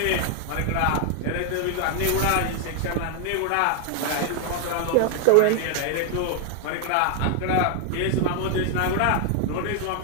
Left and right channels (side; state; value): both; different; correlation 0.00